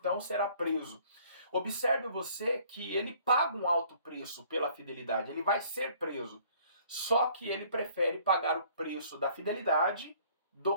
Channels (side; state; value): both; inverted; correlation -0.57